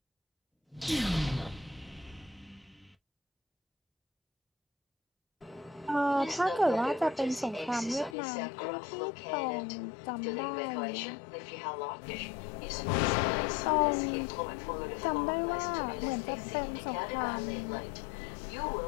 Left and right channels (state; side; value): drops out; right; at 8.2 s